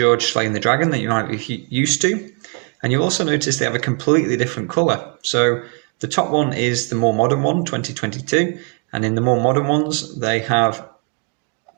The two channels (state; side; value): quieter; left; 36.6 dB